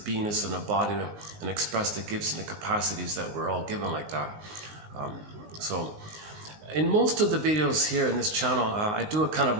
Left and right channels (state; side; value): late; left; 19 ms